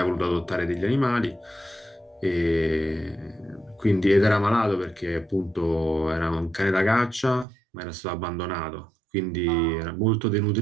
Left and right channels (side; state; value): left; drops out; at 7.5 s